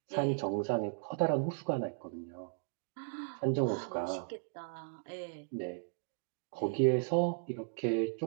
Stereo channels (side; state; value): left; silent; digital silence